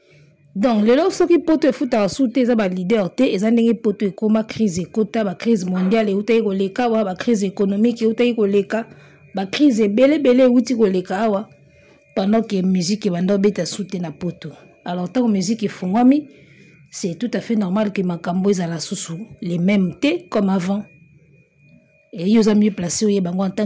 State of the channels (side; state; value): both; identical; correlation 1.00